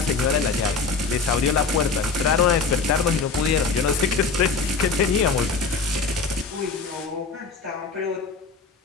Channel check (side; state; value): right; quieter; 4.6 dB